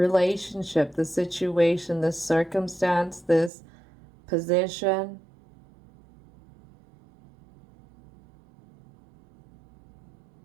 the situation, this circumstance, this position.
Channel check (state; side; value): drops out; left; at 3.5 s